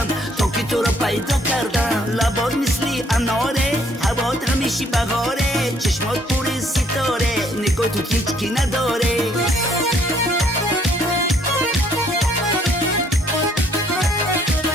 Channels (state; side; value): normal; both; correlation 0.65